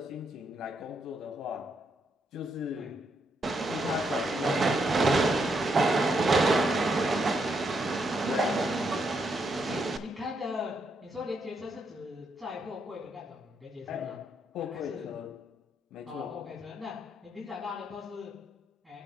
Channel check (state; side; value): normal; both; correlation 0.78